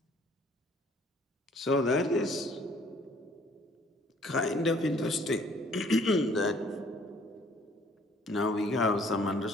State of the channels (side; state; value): both; normal; correlation 0.59